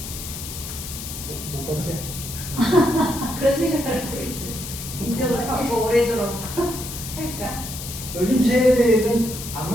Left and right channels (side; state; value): left; noise; hiss, 9 dB below the sound